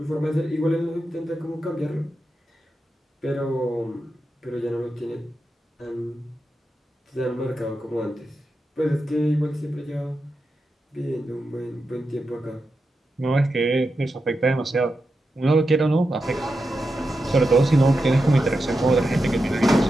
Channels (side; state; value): both; normal; correlation 0.89